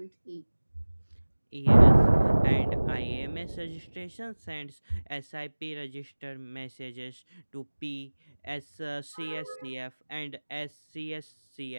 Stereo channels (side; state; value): both; inverted; correlation -1.00